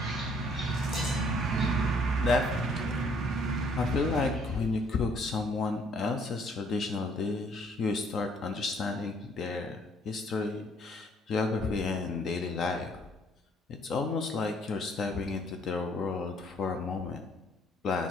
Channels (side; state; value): both; normal; correlation 0.63